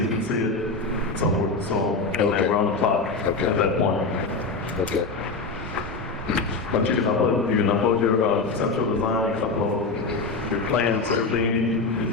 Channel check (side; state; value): right; quieter; 3.9 dB